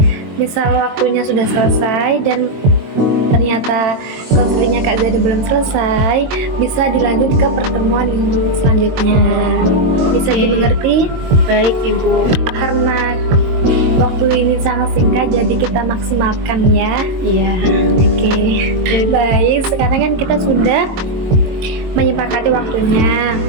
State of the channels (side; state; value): left; late; 22 ms